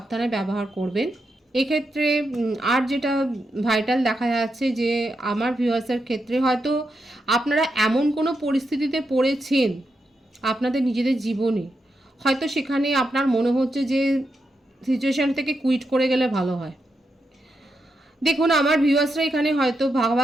ব্যবহার করবেন এক্ষেত্রে। আর যেটা ভাইটাল দেখা যাচ্ছে যে আমার ভিউয়ার্সের ক্ষেত্রে হয়তো আপনারা এমন কোনো পরিস্থিতিতে পড়েছেন আপনাদের নিজেদের জীবনে, হয়তো সেখানে আপনার মনে হচ্ছে যে সিচুয়েশান থেকে কুইট করে গেলে ভালো হয়। দেখুন আমার ভিউয়ার্সরা এখানে হয়তো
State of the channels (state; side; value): normal; both; correlation 0.85